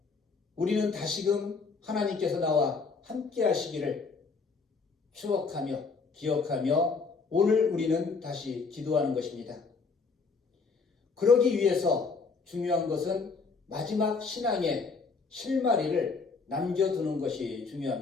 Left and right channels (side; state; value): right; quieter; 4.6 dB